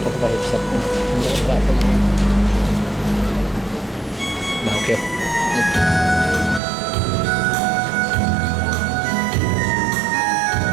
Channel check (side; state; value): left; drops out; at 6.6 s